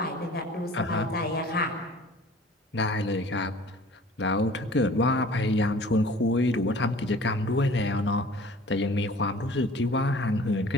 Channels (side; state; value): both; normal; correlation 0.47